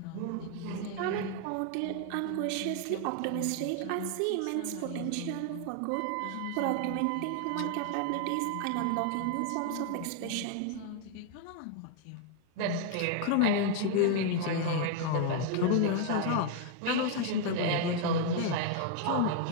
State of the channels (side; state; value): both; different; correlation 0.00